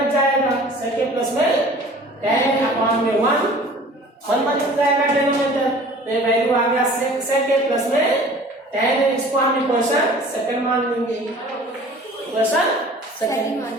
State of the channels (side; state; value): both; normal; correlation 0.46